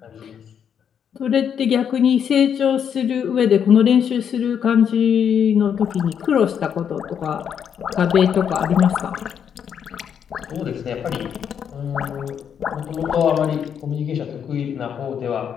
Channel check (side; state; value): right; quieter; 8.1 dB